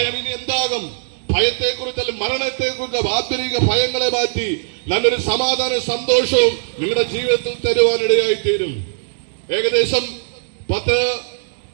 ഇനി എന്താകും, ഭയത്തെക്കുറിച്ച് അല്ലെങ്കിൽ മരണത്തെക്കുറിച്ച് ആന്തരിക ഭയങ്ങളെ മാറ്റി നല്ലൊരു സമാധാന സന്തോഷവും നിങ്ങളുടെ ജീവിതത്തിൽ തരുവാനിടയായി തീരും. ഏകദേശം 10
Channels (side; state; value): left; silent; 66 dB below the other